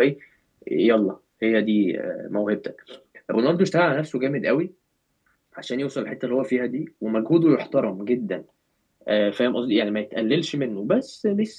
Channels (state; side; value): identical; both; correlation 1.00